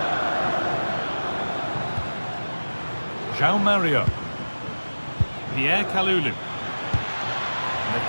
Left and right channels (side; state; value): both; inverted; correlation -1.00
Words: João Mario. Pierre Kalulu. And they've